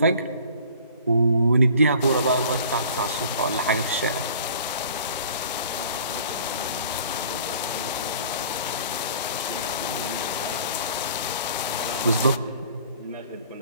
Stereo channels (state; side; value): inverted; both; correlation -0.49